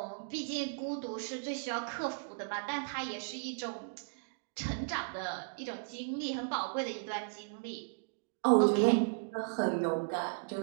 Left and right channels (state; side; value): silent; left; digital silence